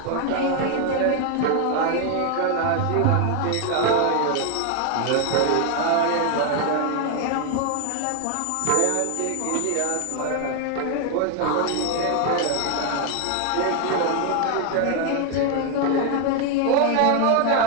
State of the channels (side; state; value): both; different; correlation 0.01